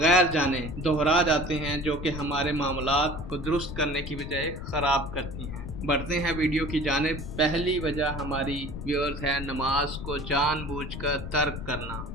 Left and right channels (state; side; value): noise; left; rumble, 8 dB below the sound